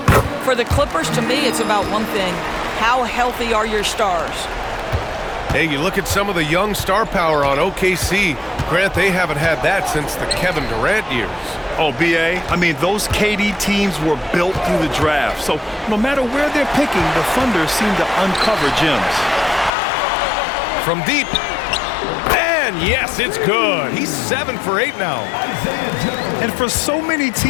For the Clippers, to me, it's about one thing. How healthy are your stars? Hey, you look at some of the young star power on OKC. Grant, they haven't had that since the Kevin Durant years. Oh, B.A., I mean, those KD teams were built through the draft. So no matter where they're picking, the Thunder seem to uncover gems. From deep. And yes, it's good. He's 7 for 8 now. And for so many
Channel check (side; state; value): right; drops out; at 19.7 s